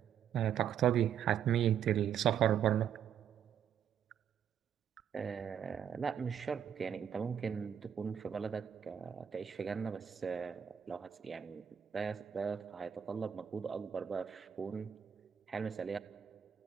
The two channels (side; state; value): left; quieter; 8.6 dB